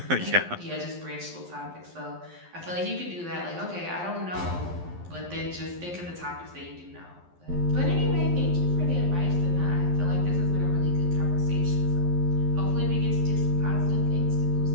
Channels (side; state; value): left; late; 11 ms